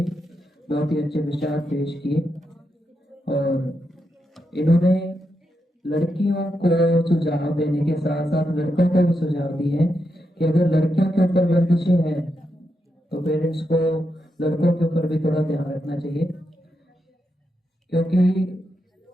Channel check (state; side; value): normal; both; correlation 0.84